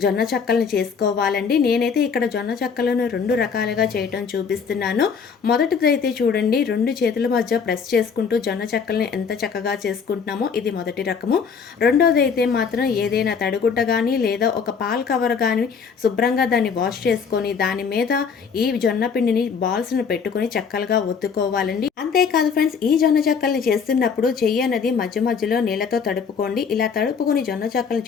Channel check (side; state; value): right; quieter; 6.1 dB